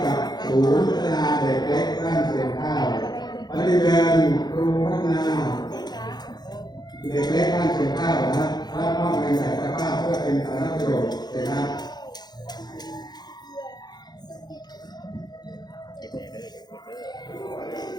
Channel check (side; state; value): right; late; 0.20 ms